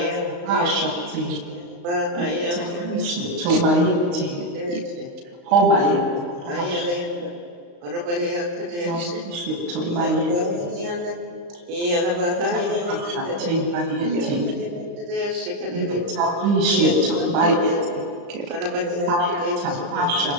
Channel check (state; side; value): late; left; 35 ms